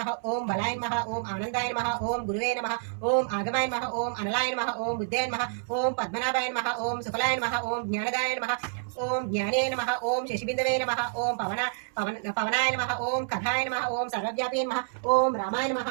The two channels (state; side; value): silent; left; 59 dB below the other